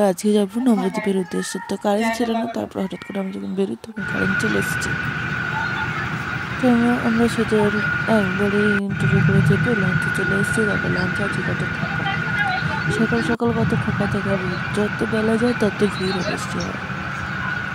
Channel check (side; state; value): both; identical; correlation 1.00